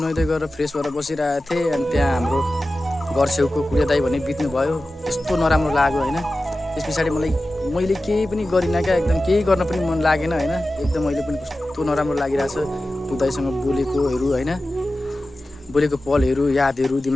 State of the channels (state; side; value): normal; both; correlation 0.94